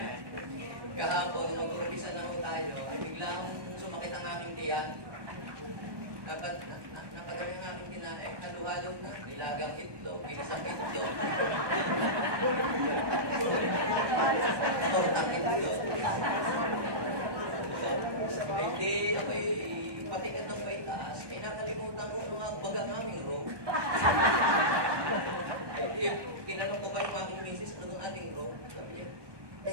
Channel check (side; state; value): left; late; 1.2 ms